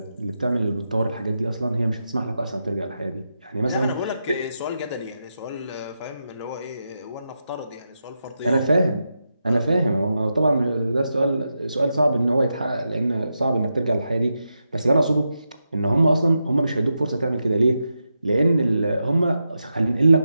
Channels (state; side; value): inverted; both; correlation -0.87